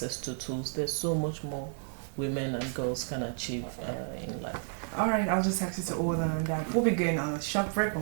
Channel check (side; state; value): left; silent; 57 dB below the other